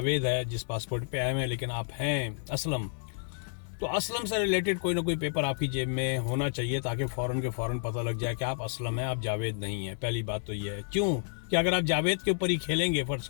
है जिस पासपोर्ट पे आए हैं, लेकिन आप हैं असलम, तो असलम से रिलेटेड कोई ना कोई पेपर आपकी जेब में होना चाहिए, ताकि फ़ौरन के फ़ौरन पता लग जाए कि आप असलम हैं, आप जावेद नहीं हैं। पहली बात तो ये है। क्यों कि अगर आप जावेद के ऊपर ही खेलेंगे, फ़र्ज़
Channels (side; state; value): right; silent; 58 dB below the other